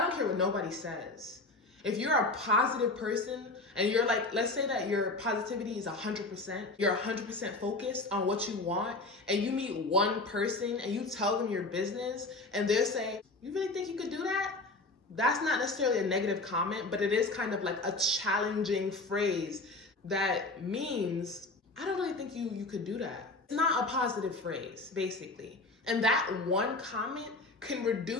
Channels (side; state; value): right; quieter; 3.2 dB